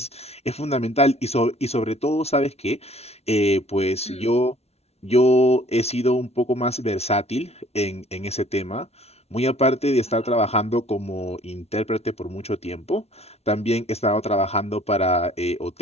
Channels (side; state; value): right; late; 0.31 ms